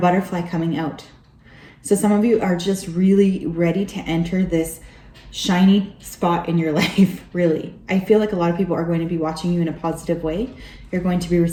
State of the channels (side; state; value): both; identical; correlation 1.00